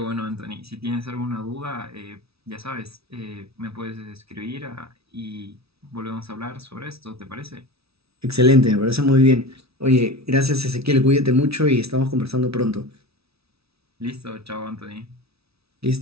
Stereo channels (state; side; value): late; left; 0.77 ms